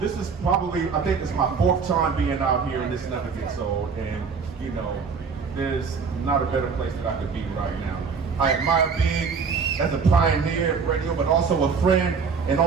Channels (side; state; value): left; quieter; 5.5 dB